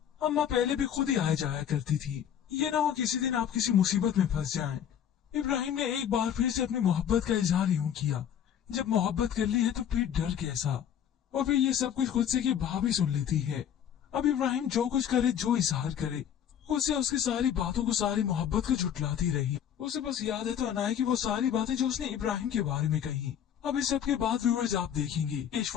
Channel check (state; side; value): quieter; right; 9.3 dB